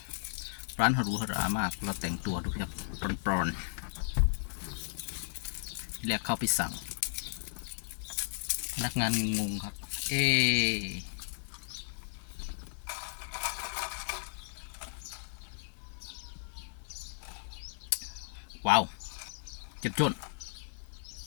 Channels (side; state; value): right; silent; digital silence